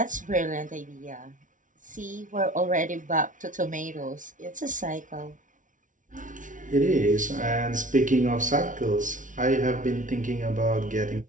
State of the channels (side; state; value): left; late; 0.37 ms